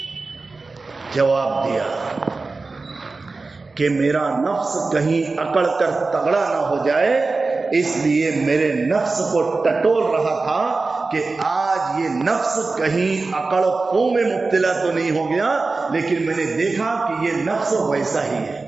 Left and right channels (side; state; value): left; quieter; 3.8 dB